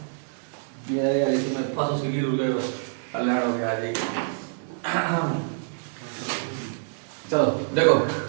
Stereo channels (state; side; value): silent; left; digital silence